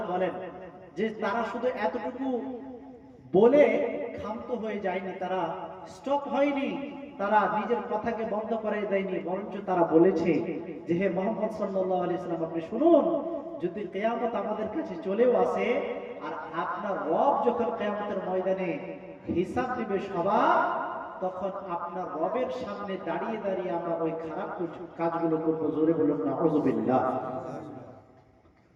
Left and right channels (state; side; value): identical; both; correlation 1.00